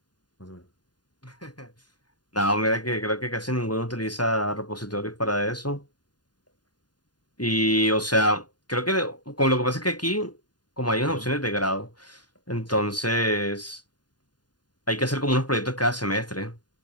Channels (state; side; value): late; right; 0.70 ms